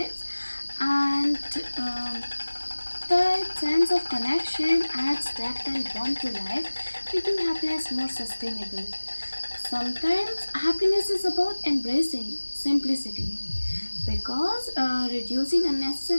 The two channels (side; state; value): both; inverted; correlation -1.00